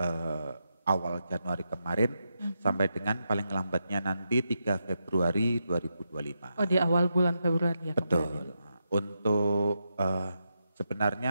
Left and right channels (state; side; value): inverted; both; correlation -0.85